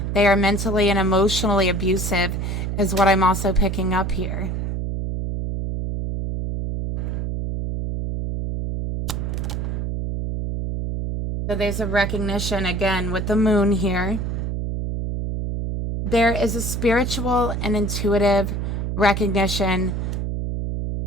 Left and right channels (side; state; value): right; noise; hum, 2 dB below the sound